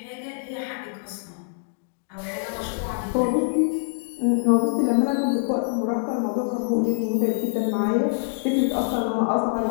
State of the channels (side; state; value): right; silent; digital silence